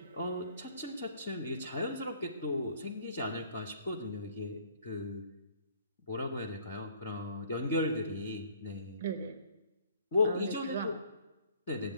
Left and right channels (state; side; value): inverted; both; correlation -0.56